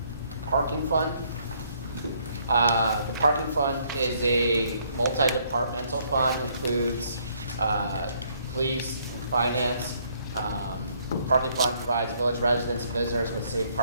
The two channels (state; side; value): inverted; both; correlation -0.67